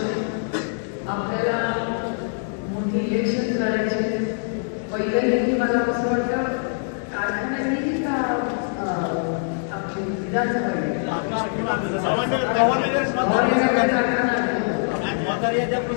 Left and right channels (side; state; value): right; silent; digital silence